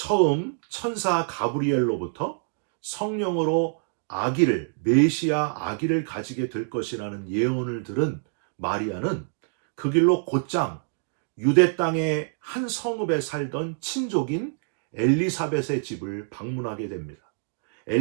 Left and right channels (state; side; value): silent; left; digital silence